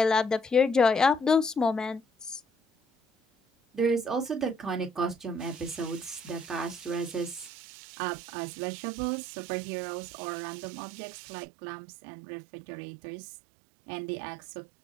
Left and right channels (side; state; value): left; drops out; at 7.5 s